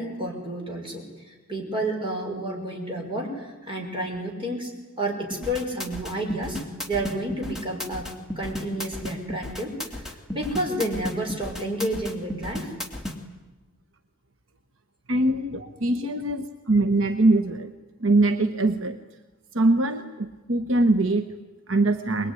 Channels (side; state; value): both; normal; correlation 0.60